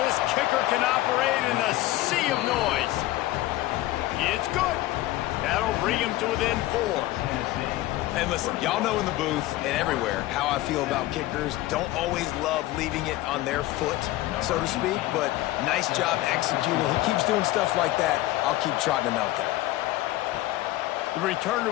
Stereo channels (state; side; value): quieter; right; 16.7 dB